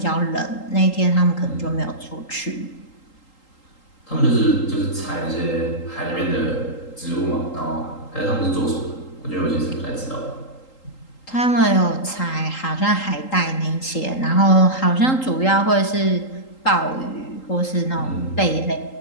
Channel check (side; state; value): right; late; 3.8 ms